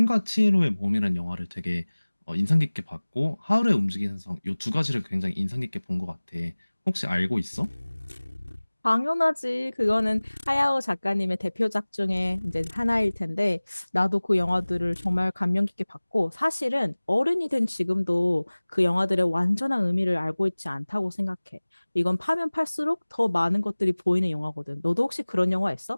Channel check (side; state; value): both; inverted; correlation -1.00